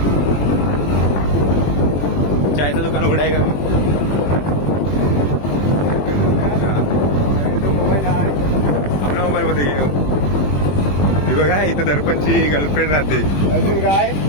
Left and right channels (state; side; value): late; right; 21 ms